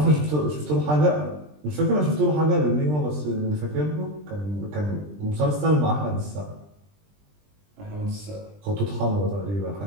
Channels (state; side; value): late; left; 20 ms